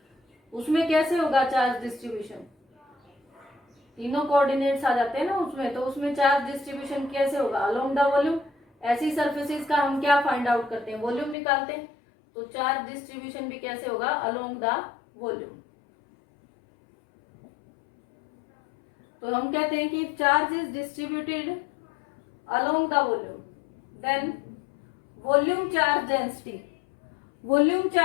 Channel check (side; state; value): right; drops out; at 11.4 s